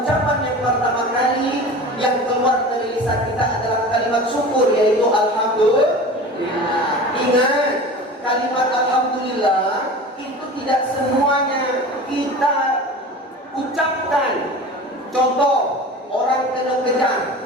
yang pertama kali yang keluar dari lisan kita adalah kalimat syukur, yaitu alhamdulillah. Ingat, kalimat alhamdulillah itu tidak semuanya kita ucapkan. Contoh, orang kena kejar,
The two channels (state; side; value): normal; both; correlation 0.36